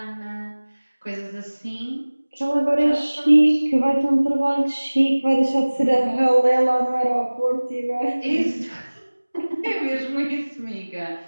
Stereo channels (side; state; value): both; inverted; correlation -1.00